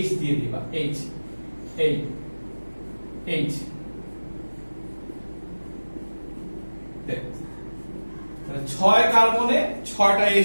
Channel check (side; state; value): both; inverted; correlation -1.00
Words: H দিয়ে দিবা, H, এই H। তাহলে 6 কার্বনে 6টা